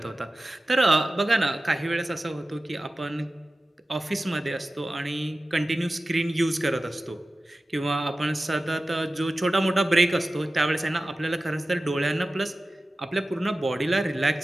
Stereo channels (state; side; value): normal; both; correlation 0.95